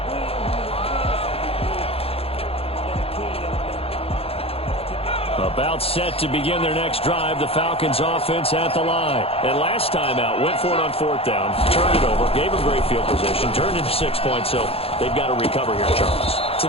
About set to begin their next drive. The Falcons offense at the line. And last time out, went for it on 4th down, turned it over, gave them great field position, turned into 6 points, so they've got to recover here, Charles. It's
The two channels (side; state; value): right; late; 0.28 ms